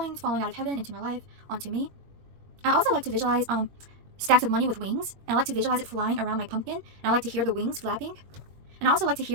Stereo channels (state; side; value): late; left; 21 ms